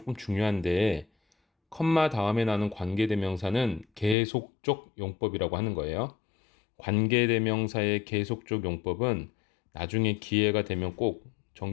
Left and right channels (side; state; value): right; drops out; at 4.2 s